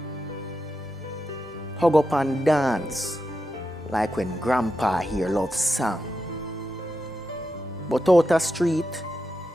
Hug up and dance like when grandpa hear love song. But out the street,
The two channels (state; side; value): normal; both; correlation 0.88